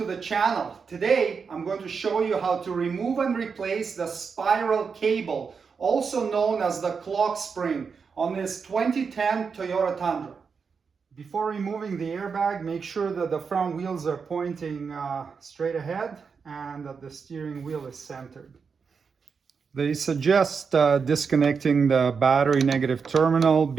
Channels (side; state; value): left; quieter; 5.6 dB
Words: the channel. Today I'm going to show you how to remove and replace the spiral cable, also known as the clock spring, on this 2010 Toyota Tundra. Before removing the airbag, make sure that the front wheels are pointing straight ahead and that the steering wheel is centered. They suggest disconnecting the battery negative terminal